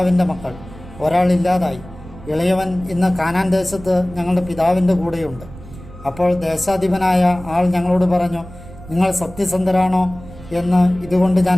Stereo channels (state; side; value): noise; right; rumble, 17 dB below the sound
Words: മക്കൾ. ഒരാളില്ലാതായി. ഇളയവൻ ഇന്ന് കാനാൻ ദേശത്ത് ഞങ്ങളുടെ പിതാവിൻ്റെ കൂടെയുണ്ട്. അപ്പോൾ ദേശാധിപനായ ആൾ ഞങ്ങളോട് പറഞ്ഞു, നിങ്ങൾ സത്യസന്ധരാണോ എന്ന് ഇതുകൊണ്ട്